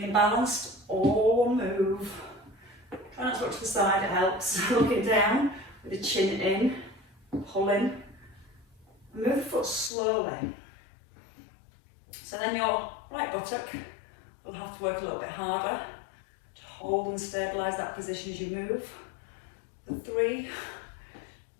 balanced, all move. Try not to look to the side, it helps. Looking down with the chin in, pull in. Move the foot slowly. So then your right buttock will have to work a little bit harder to hold and stabilise that position as you move. 3,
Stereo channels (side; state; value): right; drops out; at 9.9 s